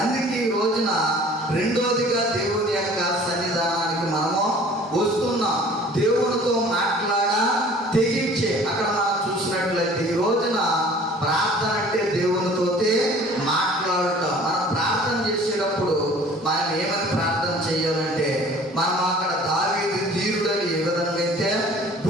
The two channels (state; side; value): normal; both; correlation 0.49